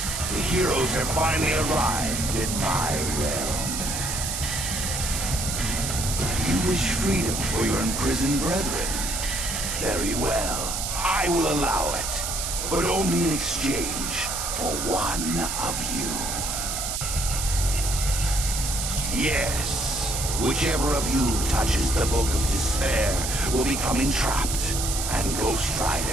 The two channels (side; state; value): right; noise; hiss, 3 dB below the sound